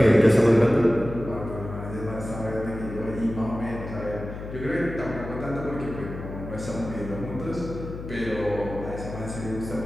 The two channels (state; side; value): noise; left; hum, 9 dB below the sound